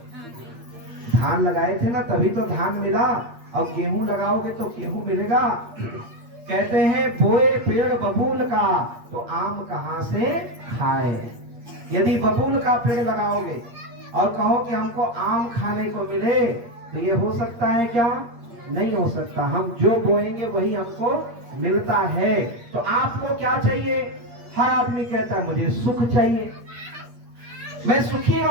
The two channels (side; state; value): left; late; 8.5 ms